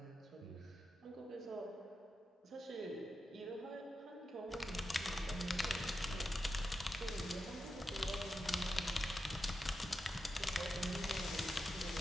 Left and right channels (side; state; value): both; normal; correlation 0.89